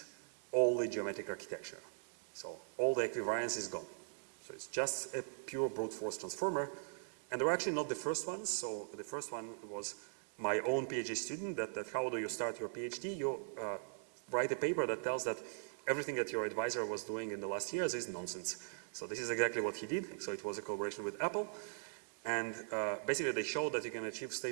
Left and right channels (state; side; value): silent; left; digital silence